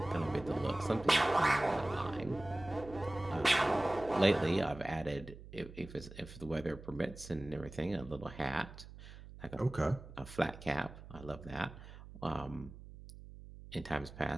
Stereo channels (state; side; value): noise; right; hum, 16 dB below the sound